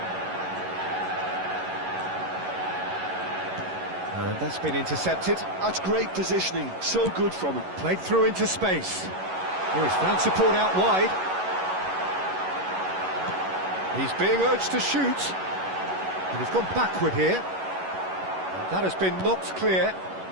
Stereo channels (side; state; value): left; late; 11 ms